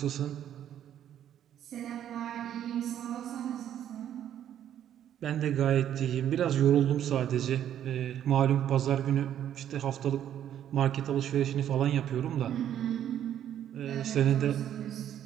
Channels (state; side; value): quieter; left; 10.5 dB